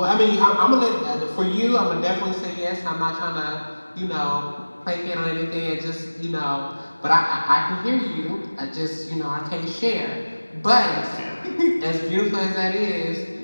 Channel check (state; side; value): inverted; both; correlation -1.00